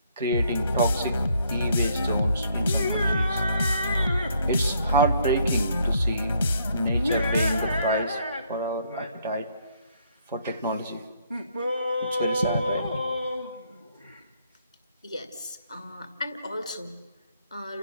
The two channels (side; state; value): both; inverted; correlation -0.69